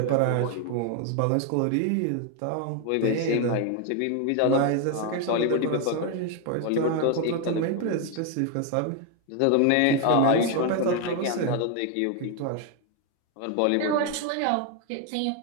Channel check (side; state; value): both; different; correlation 0.01